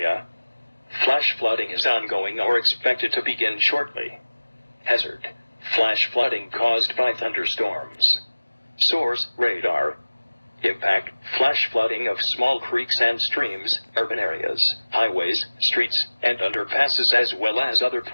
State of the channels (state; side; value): inverted; both; correlation -1.00